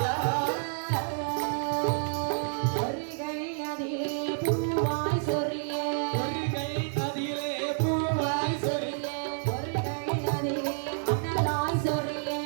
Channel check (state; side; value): silent; left; digital silence